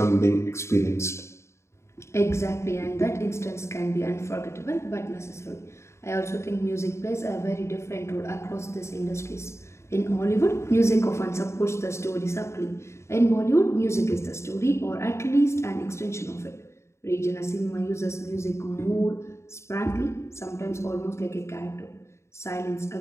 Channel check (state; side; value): late; right; 0.13 ms